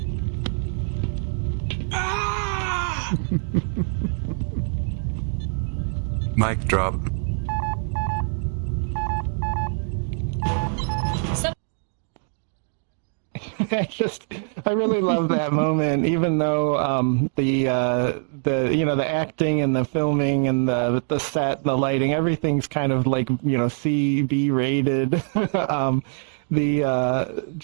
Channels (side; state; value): left; silent; 58 dB below the other